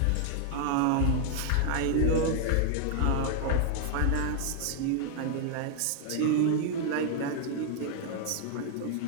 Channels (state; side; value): different; both; correlation 0.00